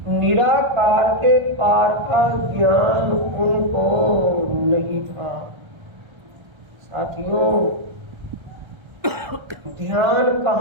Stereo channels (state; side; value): late; left; 1.3 ms